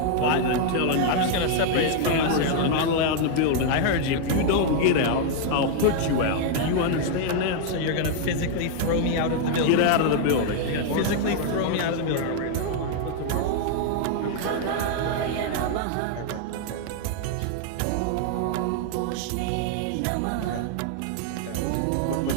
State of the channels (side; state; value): both; different; correlation 0.00